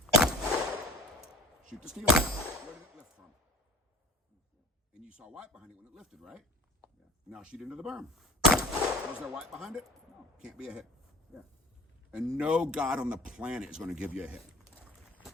Shoot the steel. Where did it lift from? And you saw white behind it when it lifted, right? Yeah. Now shoot into the berm. Was there white behind it? No. Can't be a hit. Yeah. And no God on the planet is going to give you a hit.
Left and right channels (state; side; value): normal; both; correlation 0.42